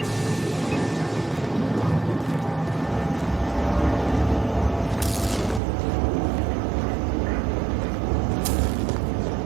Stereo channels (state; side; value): drops out; left; at 5.6 s